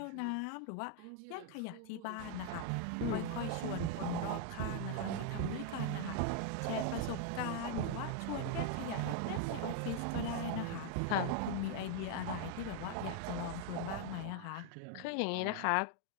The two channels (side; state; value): both; different; correlation 0.00